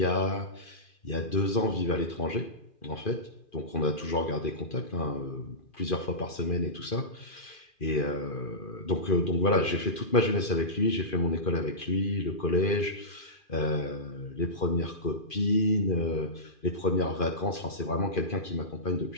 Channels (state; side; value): late; right; 2.4 ms